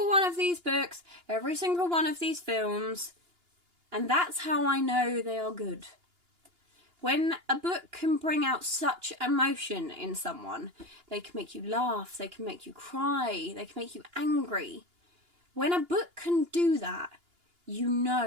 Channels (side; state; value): left; late; 2.9 ms